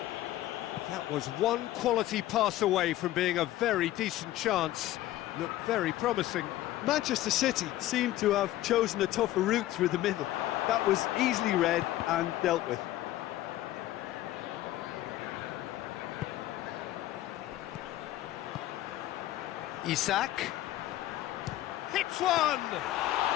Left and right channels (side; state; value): right; quieter; 14.8 dB